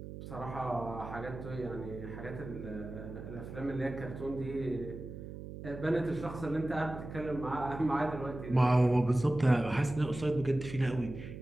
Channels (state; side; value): noise; right; hum, 10 dB below the sound